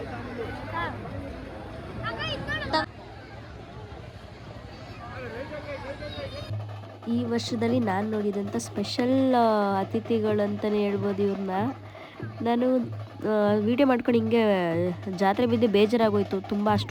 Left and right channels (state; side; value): identical; both; correlation 1.00